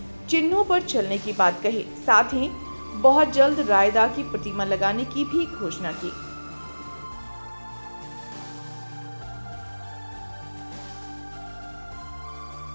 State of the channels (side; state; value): both; inverted; correlation -1.00